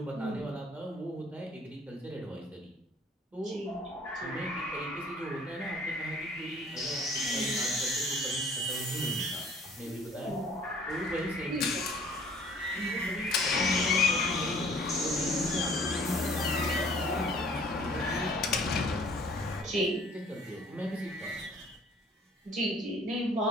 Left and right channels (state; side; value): normal; both; correlation 0.54